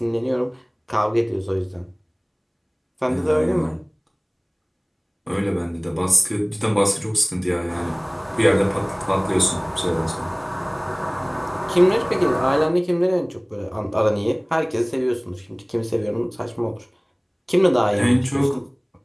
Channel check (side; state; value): both; identical; correlation 1.00